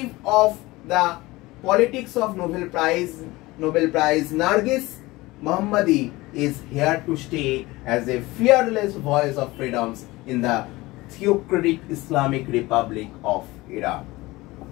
of the politics of Nobel Prize, Narges Mohammadi is here to stay as a fearless voice of freedoms in the theocratic Islamic Republic of Iran.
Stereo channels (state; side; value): quieter; right; 20.4 dB